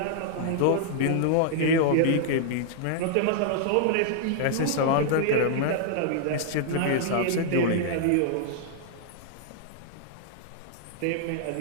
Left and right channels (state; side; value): different; both; correlation -0.01